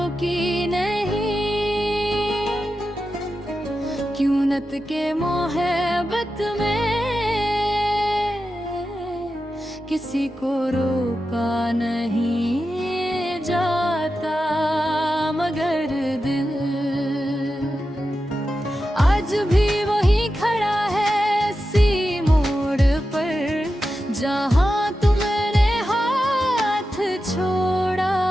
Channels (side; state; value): both; normal; correlation 0.91